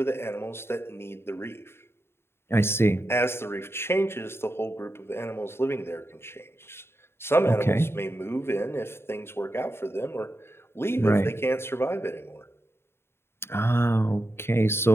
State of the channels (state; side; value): late; right; 0.12 ms